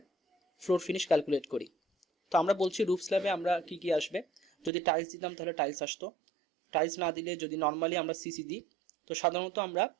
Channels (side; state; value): left; drops out; at 4.7 s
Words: ফ্লোর ফিনিশ ক্যালকুলেট করি। তো আমরা বলছি রুফ স্ল্যাবে আমরা কি কি আসবে, যদি টাইলস দিতাম তাহলে টাইলস আসতো, টাইলস না দিলে যদি নর্মালি আমরা সিসি দিই, তো সাধারণত আমরা